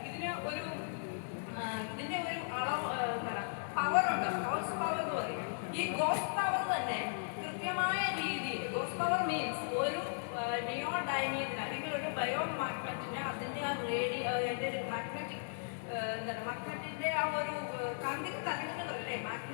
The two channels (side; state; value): right; silent; digital silence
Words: ഇതിൻ്റെ ഒരു അളവ് എന്താണ് പവറുണ്ട്, ഗോസ് പവർ എന്ന് പറയും. ഈ ഗോസ് പവർ തന്നെ കൃത്യമായ രീതിയിൽ, ഗോസ് പവർ മീൻസ് ഒരു നിയോഡൈമിയത്തിന് അല്ലെങ്കിൽ ഒരു ബയോ മാഗ്നറ്റിന് അതിൻ്റെ ആ അതിൻ്റെ ഒരു മാഗ്നറ്റിക് മാഗ്നറ്റിൻ്റെ ആ ഒരു കാന്തിക തരംഗങ്ങളല്ലേ,